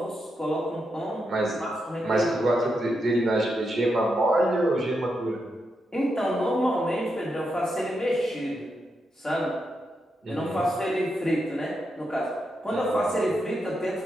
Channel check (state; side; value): normal; both; correlation 0.84